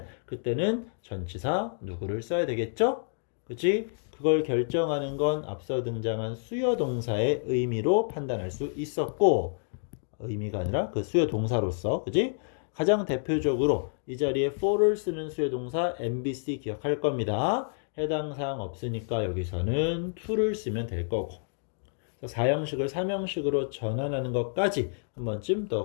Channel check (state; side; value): silent; right; digital silence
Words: 그때는 전치사 누구를 써야 되겠죠? 그치? 그걸 결정하는 건 앞서 등장한 수요 동사의 의미로 판단할 수 있었고, 의미가 아니라 그 수요 동사로서, 그치? 가장 대표적으로 이 자리에 for를 쓰는 수요 동사 MBC 기억할 겁니다. 해당 사항 없으니까 여기서는 to를 쓰면 될 거고, 사형식을 삼형식으로 전환하는 것까지 한 번쯤